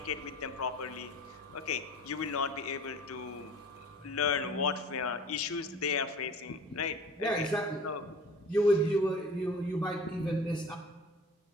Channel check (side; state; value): both; normal; correlation 0.41